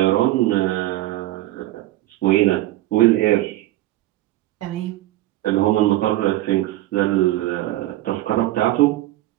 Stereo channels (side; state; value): left; quieter; 16.1 dB